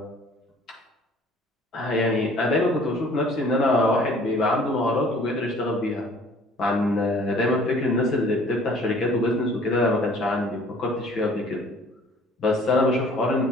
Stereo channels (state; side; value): normal; both; correlation 0.53